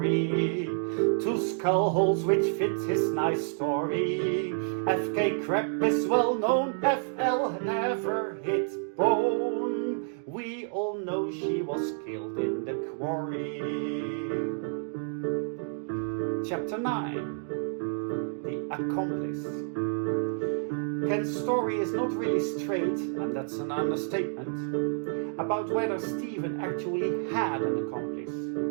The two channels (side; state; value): left; silent; 58 dB below the other